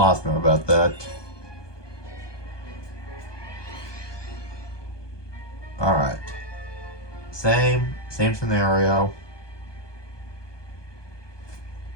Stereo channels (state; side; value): late; right; 1.2 ms